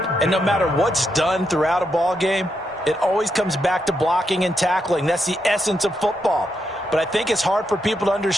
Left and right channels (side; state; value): both; normal; correlation 0.82